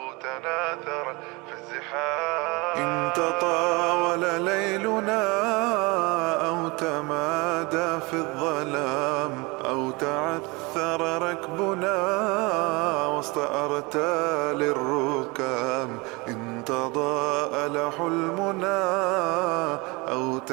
تناثر في الزحام، إن تطاول ليلنا أو تمادى في الظلام أو تعثر ركبنا وسط أرتال الركام، إن تضاءل حلمنا أو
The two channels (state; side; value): quieter; left; 26.2 dB